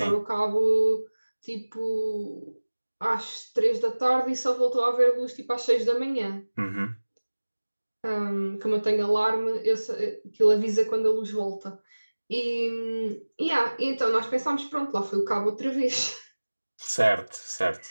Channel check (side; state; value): both; inverted; correlation -1.00